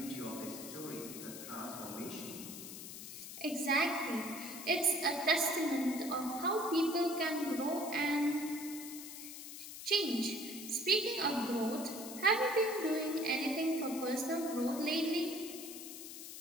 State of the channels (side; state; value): left; noise; hiss, 10 dB below the sound